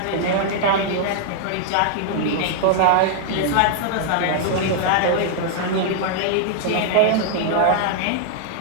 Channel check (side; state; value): both; different; correlation -0.01